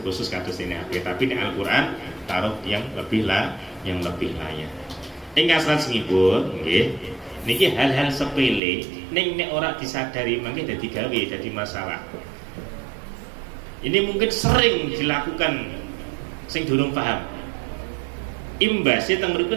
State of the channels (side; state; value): left; drops out; at 8.6 s